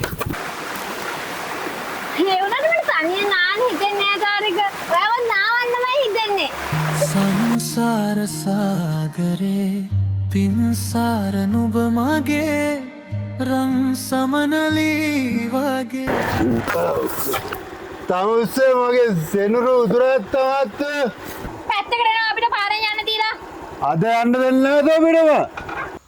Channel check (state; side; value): identical; both; correlation 1.00